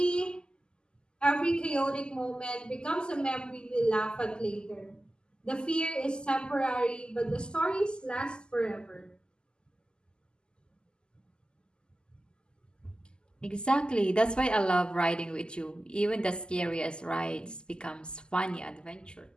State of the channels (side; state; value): right; late; 0.047 ms